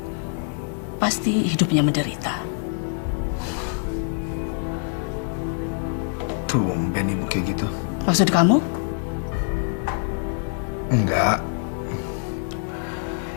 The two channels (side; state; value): right; silent; 61 dB below the other